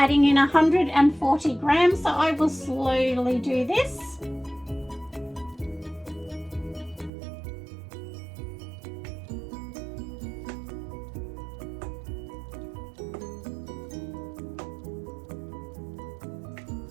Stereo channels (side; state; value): left; drops out; at 7.1 s